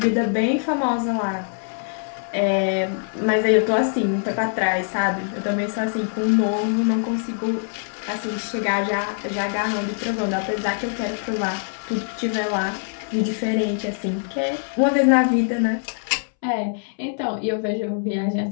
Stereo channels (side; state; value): right; silent; 63 dB below the other